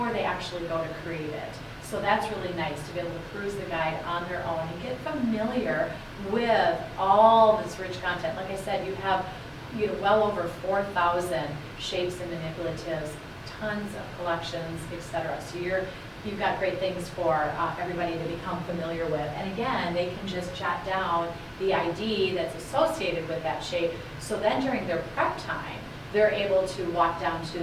they actually go to create it. So that's really nice to be able to peruse the guide on their own and get familiar with all this rich content. Like I said, you have well over 4,000 shapes and manipulatives, tons of collections, etc. So you've got great things for everybody to become familiar with. And again, they can just jot down the ID that's associated with that shape. So then during their prep time, they're able to walk down to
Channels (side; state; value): both; identical; correlation 1.00